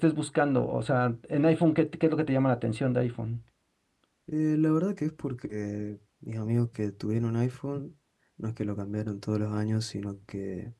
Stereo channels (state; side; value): identical; both; correlation 1.00